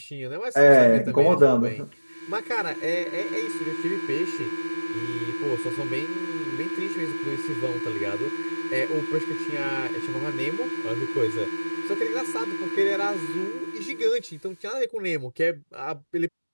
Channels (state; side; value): inverted; both; correlation -1.00